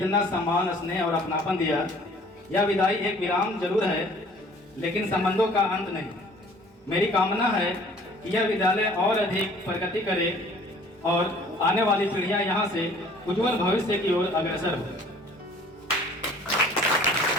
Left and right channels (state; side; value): normal; both; correlation 0.53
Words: सम्मान, स्नेह और अपनापन दिया। यह विदाई एक विराम जरूर है, लेकिन संबंधों का अंत नहीं। मेरी कामना है कि यह विद्यालय और अधिक प्रगति करे और आने वाली पीढ़ियां यहाँ से उज्जवल भविष्य की ओर अग्रसर हो।